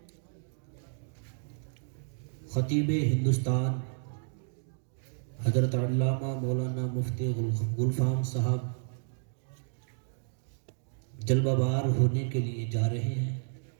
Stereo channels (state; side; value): silent; left; digital silence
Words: خطیب ہندوستان حضرت علامہ مولانا مفتی گلفام صاحب جلوہ بار ہونے کے لیے جا رہے ہیں۔